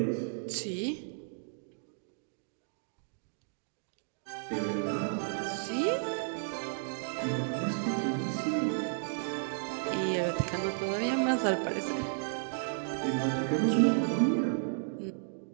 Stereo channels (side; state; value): left; silent; digital silence